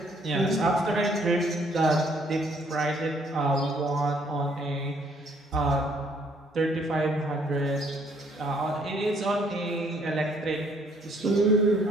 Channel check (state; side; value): normal; both; correlation 0.65